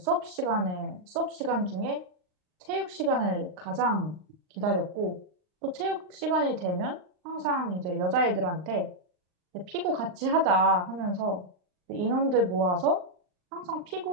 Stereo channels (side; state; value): left; late; 39 ms